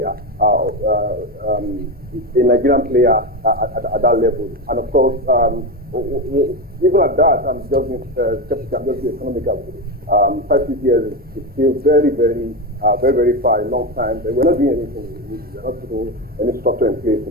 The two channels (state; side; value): normal; both; correlation 0.15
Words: a Nigerian player at that level. And of course, even at that, I'm just being skeptical. I'm just being economical. 5-6 years is still very far, a long time. But we're not doing anything. We're not putting any structure in place to